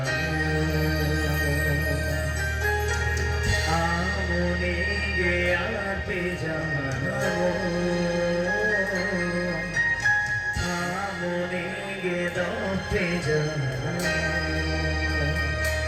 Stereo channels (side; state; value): both; identical; correlation 1.00